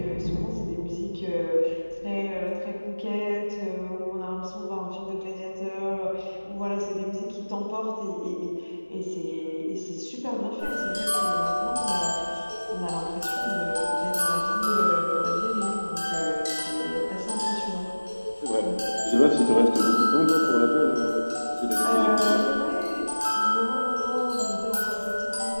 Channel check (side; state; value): both; inverted; correlation -1.00